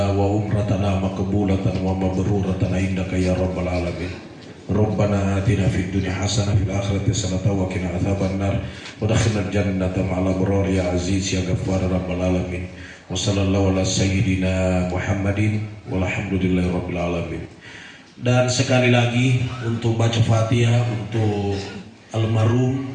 wa umratana maqbulatan wa mabruratan indaka ya rabbal alamin. Rabbana atina fid dunya hasanah fil akhirati hasanah wa qina adzabannar wa adkhilnal jannata ma'al abrar ya aziz ya ghaffar rabbal alamin. Wa sallallahu ala sayyidina Muhammadin walhamdulillahi rabbil alamin. Dan sekali lagi untuk baca Fatihah untuk almarhum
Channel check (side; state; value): both; identical; correlation 1.00